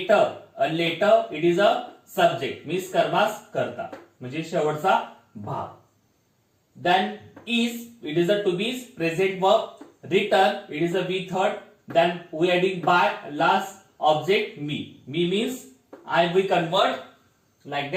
a letter it is a subject means कर्मास करता म्हणजे शेवटचा भाग. Then is, it is a to be present verb. Written, it is a V third. Then we adding by last object me. Me means I, we convert like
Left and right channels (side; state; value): both; identical; correlation 1.00